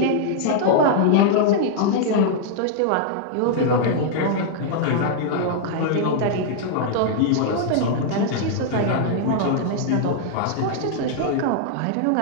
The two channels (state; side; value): different; both; correlation -0.01